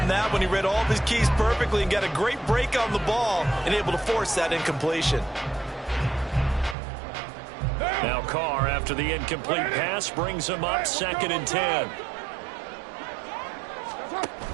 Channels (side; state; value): left; drops out; at 6.8 s